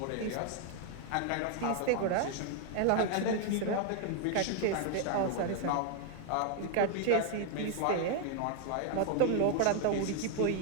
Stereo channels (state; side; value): different; both; correlation 0.00